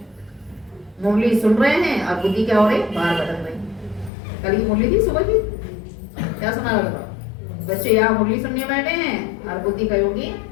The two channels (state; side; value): drops out; right; at 4.1 s